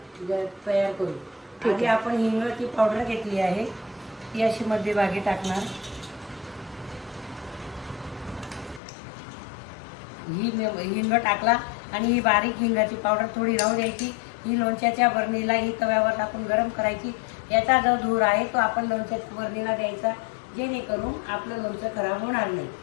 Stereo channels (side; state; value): right; drops out; at 8.8 s